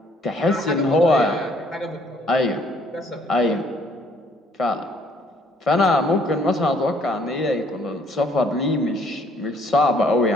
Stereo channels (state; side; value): normal; both; correlation 0.63